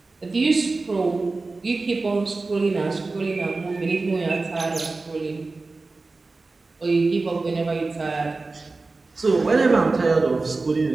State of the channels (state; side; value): quieter; left; 3.6 dB